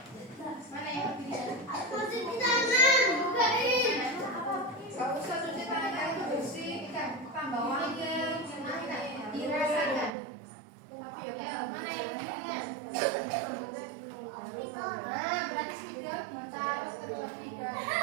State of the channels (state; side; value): drops out; left; at 10.1 s